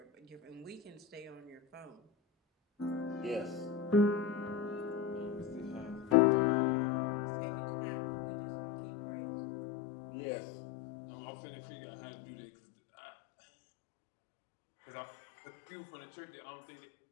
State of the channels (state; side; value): drops out; right; at 6.2 s